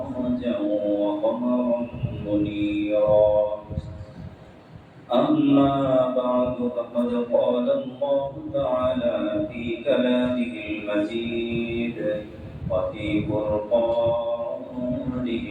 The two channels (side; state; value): both; identical; correlation 1.00